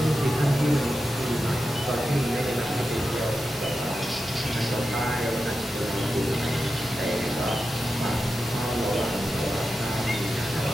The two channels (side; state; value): both; normal; correlation 0.91